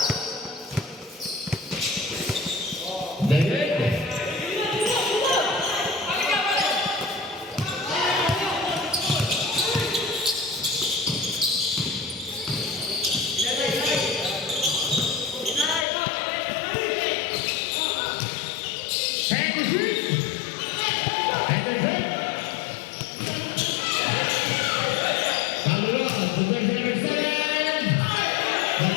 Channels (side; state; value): right; drops out; at 15.9 s